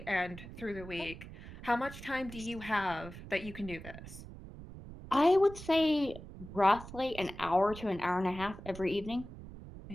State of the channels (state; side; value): noise; right; rumble, 14 dB below the sound